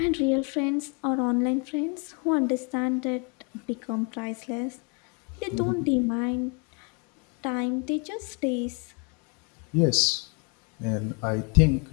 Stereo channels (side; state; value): right; quieter; 35.2 dB